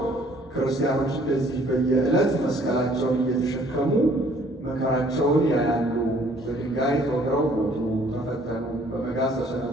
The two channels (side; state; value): both; normal; correlation 0.59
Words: ክርስቲያኖች እንደዚህ በየዕለት መስቀላቸውን እየተሸከሙ መከራቸውን ያያሉ። በድንጋይ ተወግረው ሞቱ፣ ተፈተኑ፣ በመጋዝ